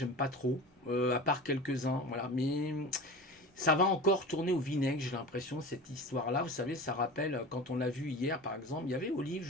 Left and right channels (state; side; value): normal; both; correlation 0.33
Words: pas trop, à part quelques-uns, voilà. Mais ça va encore tourner au vinaigre, j'ai l'impression, cette histoire-là. Vous savez, ça rappelle, quand on l'a vu hier, par exemple, il y avait Olive,